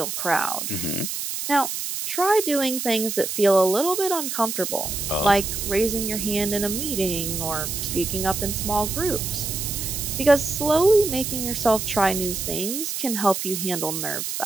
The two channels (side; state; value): right; noise; hiss, 4 dB below the sound